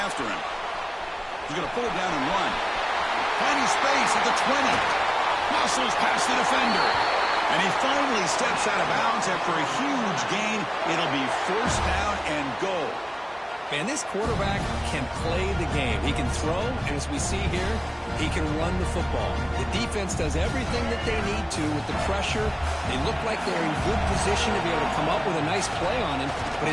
him. He's going to pull it down and run. Finding space at the 20. Muscles past the defender. And he finally steps out of bounds after a huge gain. It'll be first down and goal. And this quarterback can play the game. He can throw, and as we see here, he can run the football. The defense does everything that they need to with the pressure. They look like they're in good position to be able to come up with a nice play on him, but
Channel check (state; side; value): identical; both; correlation 1.00